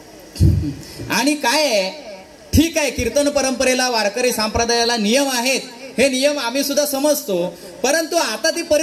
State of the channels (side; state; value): both; identical; correlation 1.00